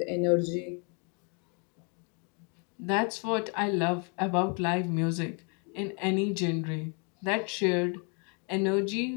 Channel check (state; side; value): quieter; right; 36.4 dB